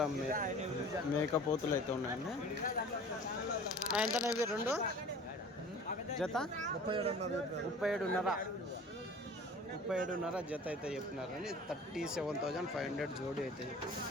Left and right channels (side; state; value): both; normal; correlation 0.44